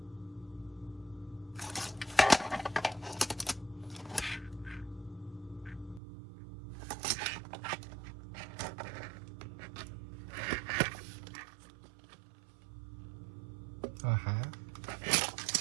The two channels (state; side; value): drops out; left; at 6.0 s